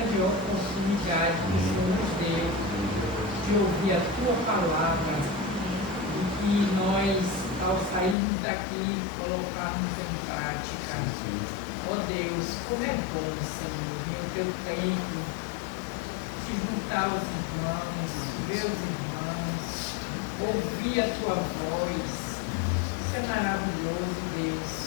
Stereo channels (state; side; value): drops out; right; at 8.2 s